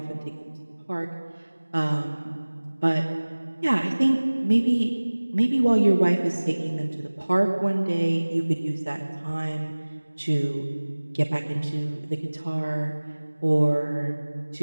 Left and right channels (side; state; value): both; inverted; correlation -1.00